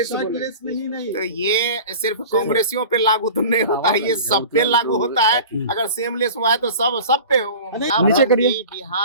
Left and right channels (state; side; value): inverted; both; correlation -0.38